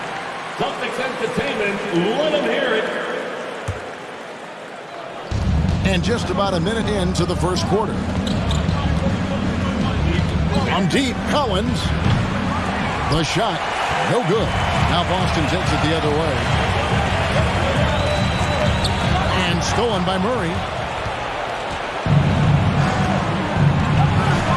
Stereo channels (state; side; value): identical; both; correlation 1.00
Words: Celtics Entertainment, let them hear it. And just about a minute into the first quarter. From deep, Collins. The shot, no good. Now Boston takes it the other way. And stolen by Murray.